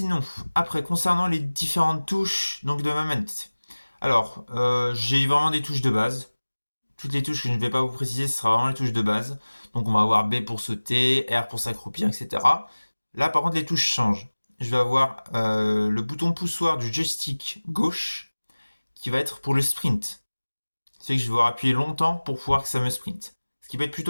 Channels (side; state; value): both; inverted; correlation -1.00